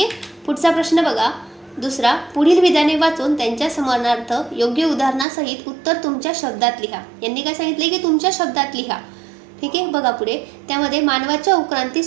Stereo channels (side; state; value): left; drops out; at 5.2 s